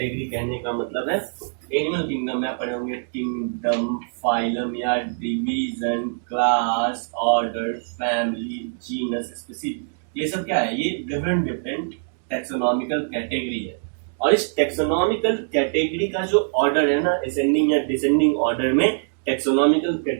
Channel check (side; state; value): left; silent; digital silence